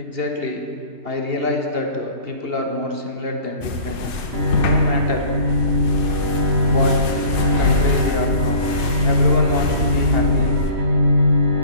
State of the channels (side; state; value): left; late; 2.6 ms